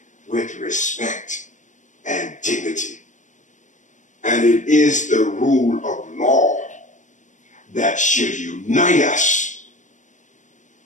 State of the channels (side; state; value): right; late; 0.36 ms